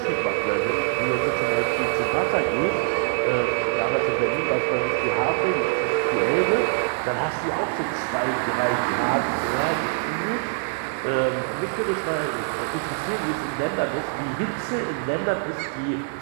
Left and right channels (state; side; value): silent; left; digital silence